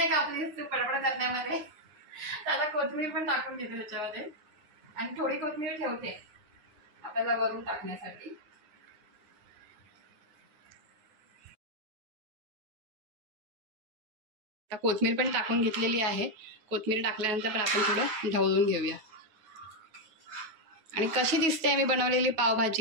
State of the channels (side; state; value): left; late; 9.7 ms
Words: कापलीस तू पडपड करण्यामध्ये. तर आता कोथिंबीर पण टाकून घेते त्याच्यामध्ये. आणि थोडी कोथिंबीर ठेवते आपल्याला वरून टाकण्यासाठी. आता कोथिंबीर पण टाकून घेतलेली आहे. कोथिंबीर टाकल्यानंतर पण आपण थोडं ढवळून घेऊया. आणि कशी दिसते मी बनवलेली